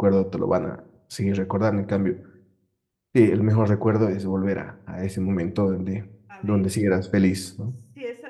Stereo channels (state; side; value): identical; both; correlation 1.00